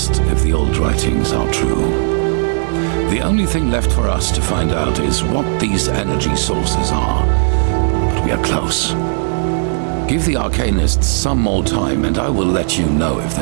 if the old writings are true. The only thing left for us to find out is what these energy sources are. But we are close. Give the Arcanists some more time and I will let you know if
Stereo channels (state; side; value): silent; left; 69 dB below the other